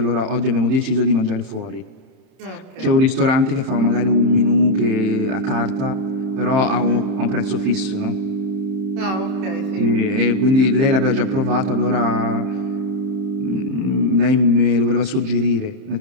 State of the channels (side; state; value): left; late; 31 ms